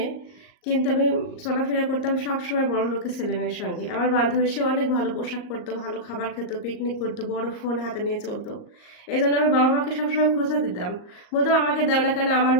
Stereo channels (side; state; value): right; late; 38 ms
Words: কিন্তু আমি চলাফেরা করতাম সবসময় বড় লোকের ছেলে মেয়ের সঙ্গে। আমার বান্ধবী সে অনেক ভালো পোশাক পরতো, ভালো খাবার খেত, পিকনিক করতো, বড় ফোন হাতে নিয়ে চলতো। এই জন্য আমি বাবা মাকে সবসময় খোঁজা দিতাম, বলতাম আমাকে দেও না কেন, আমার